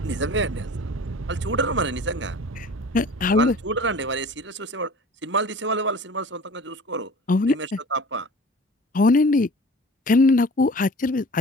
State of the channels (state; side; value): normal; both; correlation 0.43